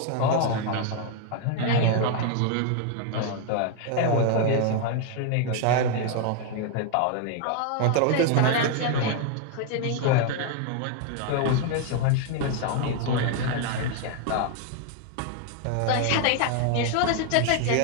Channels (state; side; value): different; both; correlation 0.00